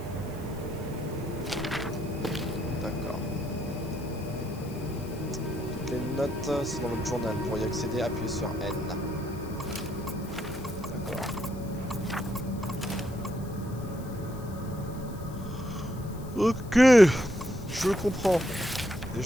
D'accord. Toutes les notes, c'est dans votre journal. Pour y accéder, appuyez sur N. D'accord. Ok, je comprends. Et je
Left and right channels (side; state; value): left; noise; hiss, 21 dB below the sound